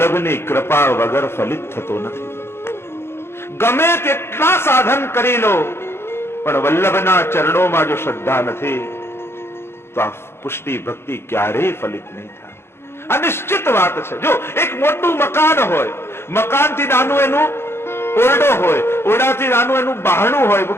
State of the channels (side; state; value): right; late; 0.12 ms